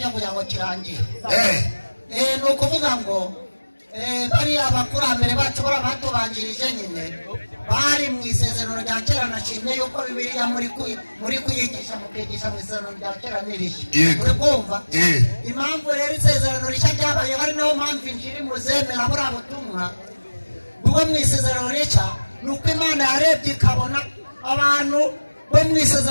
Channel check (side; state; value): both; inverted; correlation -1.00